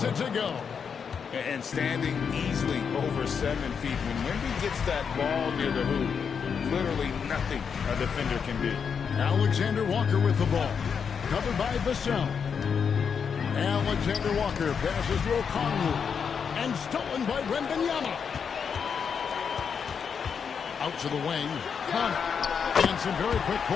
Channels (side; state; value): right; quieter; 6.6 dB